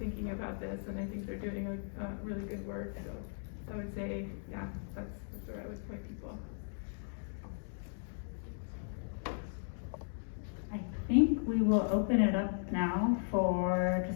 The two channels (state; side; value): silent; right; digital silence